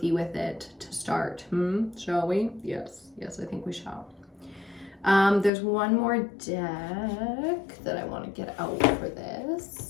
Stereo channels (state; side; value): drops out; right; at 5.5 s